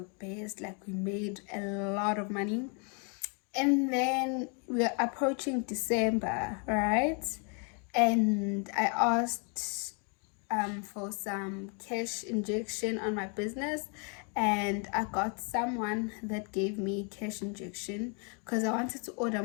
best, like we made a lot of money. And then we're approaching December, right? And I asked for some cash injection on my business, and I got someone that gave me cash injection because I wanted to order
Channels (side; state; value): right; quieter; 37.4 dB